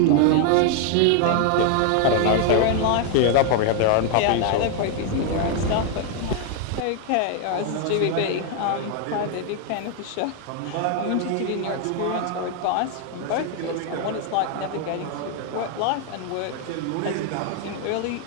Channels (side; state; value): both; different; correlation 0.00